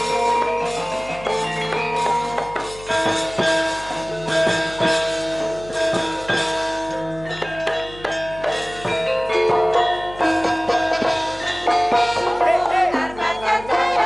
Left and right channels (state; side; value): noise; left; hum, 18 dB below the sound